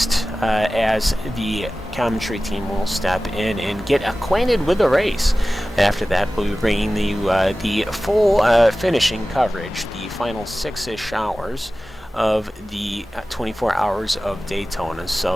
as the commentary team will step in and get acquainted with the race. After that, we'll be bringing the full finishing coverage, the final 6-ish hours of the 24 Hours of Daytona.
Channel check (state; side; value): normal; both; correlation 0.96